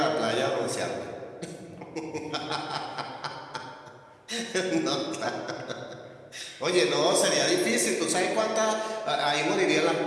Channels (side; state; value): both; identical; correlation 1.00